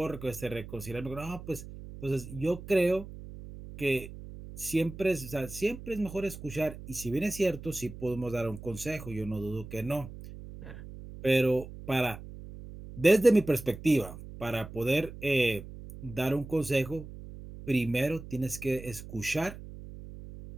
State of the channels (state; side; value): noise; right; hum, 13 dB below the sound